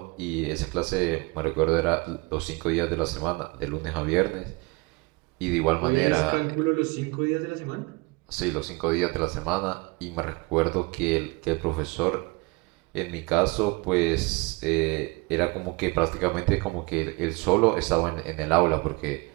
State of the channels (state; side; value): quieter; left; 26.7 dB